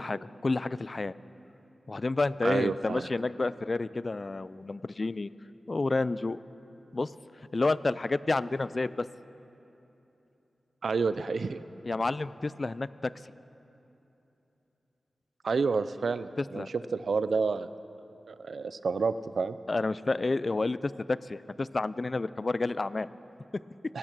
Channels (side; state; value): both; normal; correlation 0.93